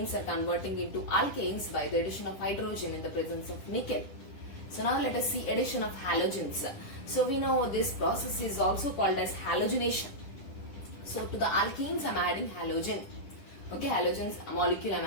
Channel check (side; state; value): right; late; 10 ms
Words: are converting into alkanes by the addition of hydrogen in the presence of nickel. So now let us see addition of halogens. So we know this process is also called as halogenation. So to the alkenes I am adding halogen. Okay, halogens molecule I am